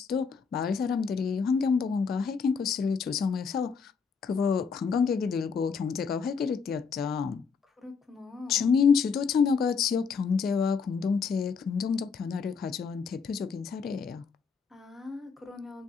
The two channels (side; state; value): right; quieter; 5.6 dB